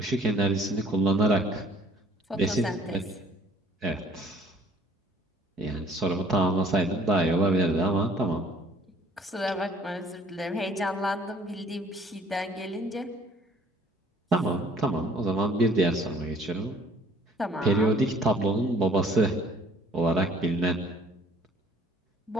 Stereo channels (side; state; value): both; normal; correlation 0.55